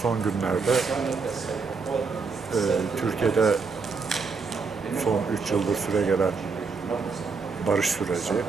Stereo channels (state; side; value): quieter; left; 4.8 dB